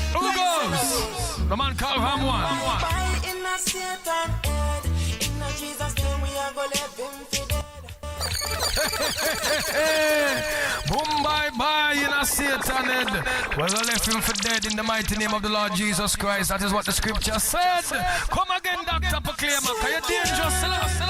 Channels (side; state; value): both; identical; correlation 1.00